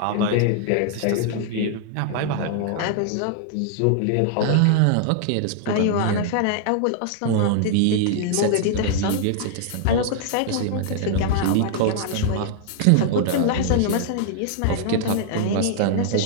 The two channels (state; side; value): different; both; correlation -0.01